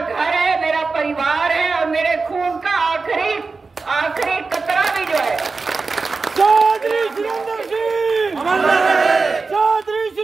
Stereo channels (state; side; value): quieter; left; 4.2 dB